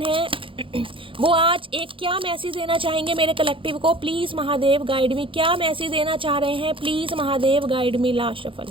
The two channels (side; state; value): left; late; 0.25 ms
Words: है वो आज एक क्या मैसेज देना चाहेंगे मेरे कलेक्टिव को। प्लीज़ महादेव गाइड मी, क्या मैसेज देना चाह रहे हैं, please Mahadev guide me. Last shuffle